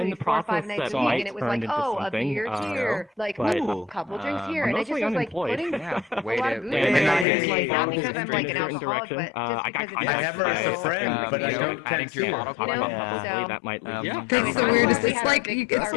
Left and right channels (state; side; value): drops out; right; at 7.2 s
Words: the process that might turn into something. Like a couple drinks here, and I just was like putting a lot of booze in. Not because I'm like an alcoholic, but I have her as a friend, but I don't can't see her. That might lead. That's the weirdest. It's like